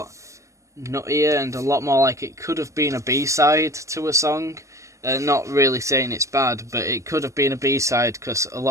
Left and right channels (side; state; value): left; late; 0.15 ms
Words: nuttier and a lot more like it could have been a B-side to a song. Not really saying it's bad, but it could have been a B-side because a